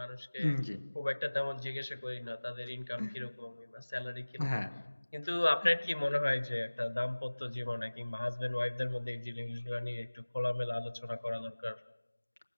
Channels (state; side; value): inverted; both; correlation -1.00